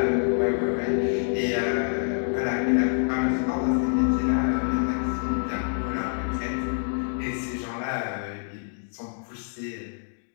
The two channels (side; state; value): right; silent; 60 dB below the other